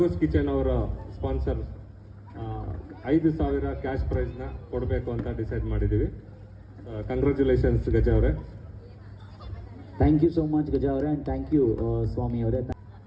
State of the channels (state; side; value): identical; both; correlation 1.00